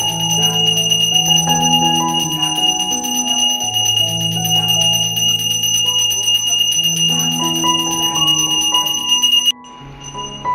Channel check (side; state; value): both; identical; correlation 1.00